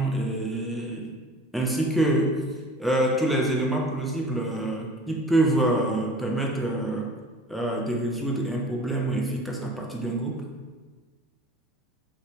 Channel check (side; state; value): both; normal; correlation 0.44